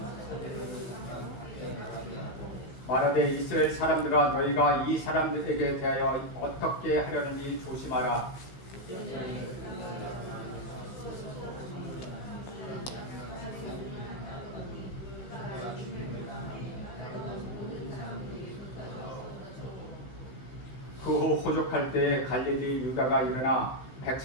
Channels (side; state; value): right; late; 16 ms